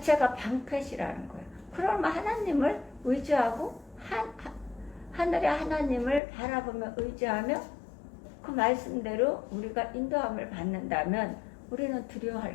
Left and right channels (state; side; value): drops out; right; at 6.2 s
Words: 방패시라는 거예요. 그러면 하나님을 의지하고 하늘의 하나님을 바라보며 의지하며 그 말씀대로 우리가 인도함을 받는다면 우리는